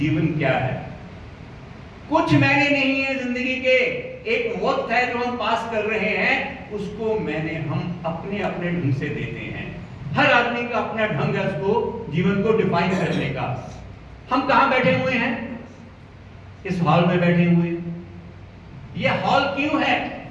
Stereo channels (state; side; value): identical; both; correlation 1.00